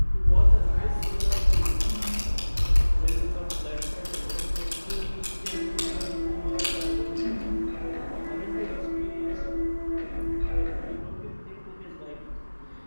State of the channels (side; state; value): both; inverted; correlation -1.00